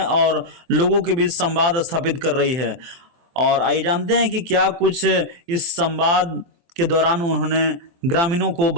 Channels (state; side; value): late; left; 23 ms